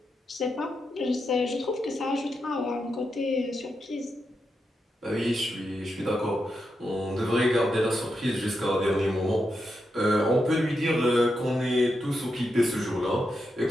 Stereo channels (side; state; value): both; normal; correlation 0.85